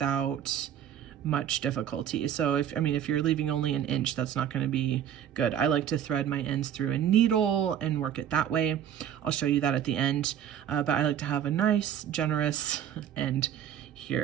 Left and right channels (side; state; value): left; quieter; 9.8 dB